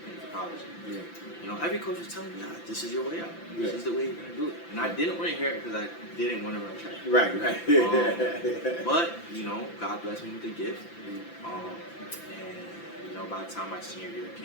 paying for college. Yeah. You know, every coach was telling me, this is your way out. Yeah. This is the way you're gonna do it. And I didn't want to hear it because I didn't want to run track. Right. But you know, God blessed me with a gift. And you know, by the time my senior year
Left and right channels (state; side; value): late; right; 5.9 ms